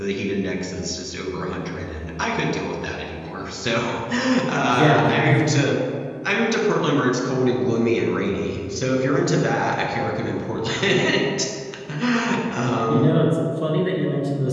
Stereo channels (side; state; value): both; identical; correlation 1.00